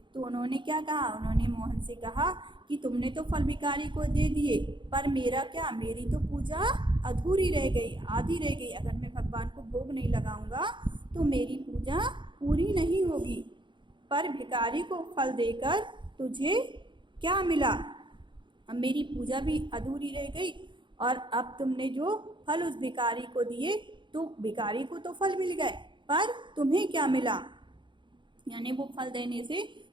तो उन्होंने क्या कहा, उन्होंने मोहन से कहा कि तुमने तो फल भिखारी को दे दिए, पर मेरा क्या, मेरी तो पूजा अधूरी रह गई, आधी रह गई। अगर मैं भगवान को भोग नहीं लगाऊंगा तो मेरी पूजा पूरी नहीं होगी। पर भिखारी को फल देकर तुझे क्या मिला? अब मेरी पूजा भी अधूरी रह गई और अब तुमने जो फल उस भिखारी को दिए तो भिखारी को तो फल मिल गए, पर तुम्हें क्या मिला, यानी वो फल देने से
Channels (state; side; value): late; left; 0.23 ms